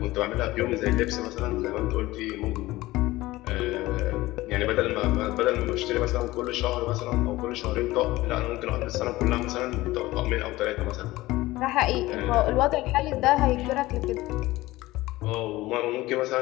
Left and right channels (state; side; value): quieter; right; 18.4 dB